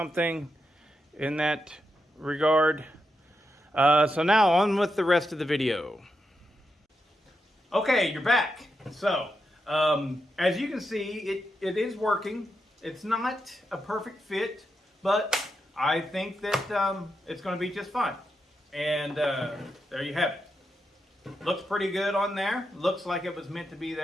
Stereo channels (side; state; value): both; normal; correlation 0.85